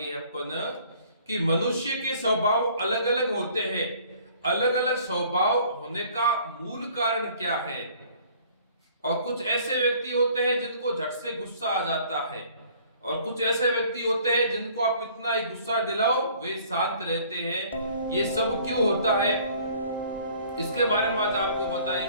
अपन कि मनुष्य के स्वभाव अलग अलग होते हैं। अलग अलग स्वभाव होने का मूल कारण क्या है? और कुछ ऐसे व्यक्ति होते हैं जिनको झट से गुस्सा आ जाता है, और कुछ ऐसे व्यक्ति होते हैं जिनको आप कितना ही गुस्सा दिलाओ वे शांत रहते हैं। ये सब क्यों होता है, इसके बारे में आज आपको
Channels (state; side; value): inverted; both; correlation -0.55